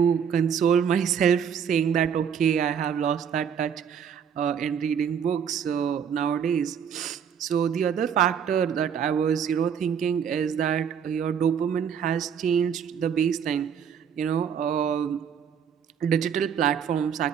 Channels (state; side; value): quieter; left; 7.8 dB